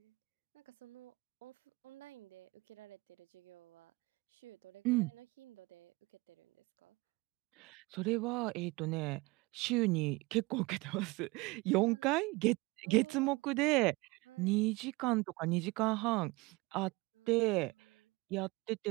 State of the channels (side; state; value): left; quieter; 23.8 dB